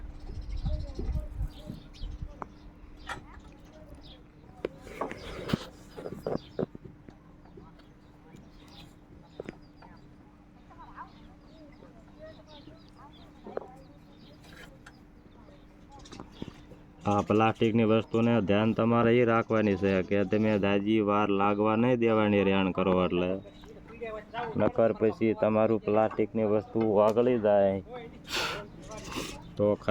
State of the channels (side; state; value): both; identical; correlation 1.00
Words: આ પ્લાસ્ટિકની વસ્તુને ધ્યાન તમારે એ રાખવાની છે કે તમે દાજી વાર લાગવા નહીં દેવાની રેણ કરો, એટલે નકર પછી તમારું પ્લાસ્ટિકની વસ્તુ વાગળી જાય તો